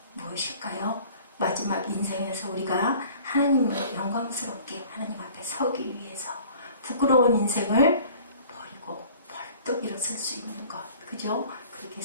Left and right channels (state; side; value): inverted; both; correlation -0.49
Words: 무엇일까요? 마지막 인생에서 우리가 하나님을 영광스럽게 하나님 앞에 서기 위해서 부끄러운 인생을 버리고 벌떡 일어설 수 있는 것, 그죠? 그렇게